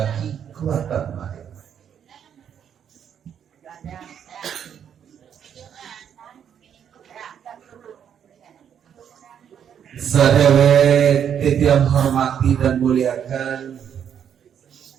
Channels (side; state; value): left; quieter; 8.6 dB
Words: kuatan mereka. Sadawet titiang hormati dan muliakan